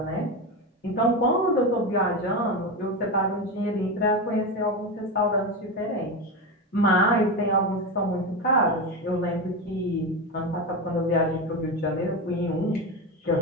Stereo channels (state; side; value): normal; both; correlation 0.18